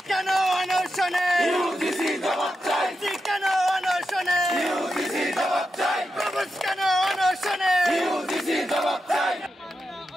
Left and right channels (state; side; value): normal; both; correlation 0.88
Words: কেন অনশনে ইউজিসি জবাব চাই ইসি কেন অনশনে ইউজিসি জবাব চাই প্রভুজ কেন অনশনে ইউজিসি জবাব চাই